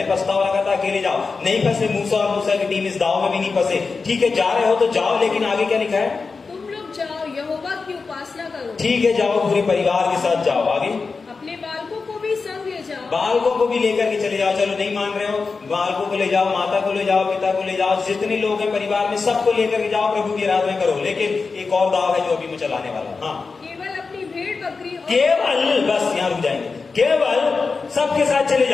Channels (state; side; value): quieter; right; 4.5 dB